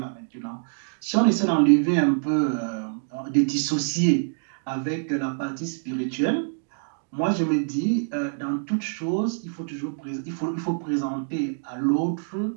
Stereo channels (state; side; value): silent; left; digital silence